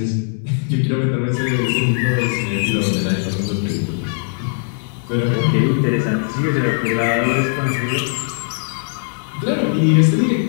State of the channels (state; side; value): silent; right; 66 dB below the other